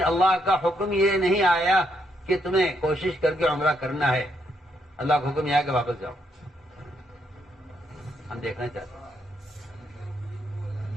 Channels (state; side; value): normal; both; correlation 0.76